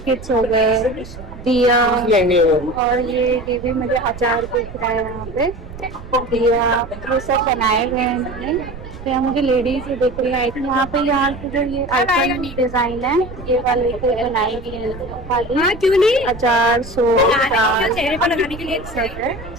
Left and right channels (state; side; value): noise; right; rumble, 13 dB below the sound